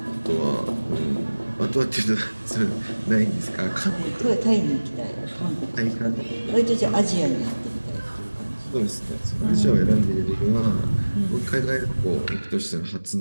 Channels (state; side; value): inverted; both; correlation -1.00